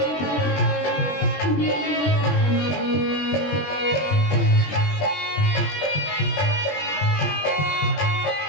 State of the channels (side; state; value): right; late; 20 ms